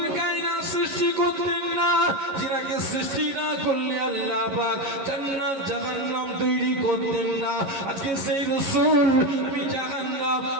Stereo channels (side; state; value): left; late; 11 ms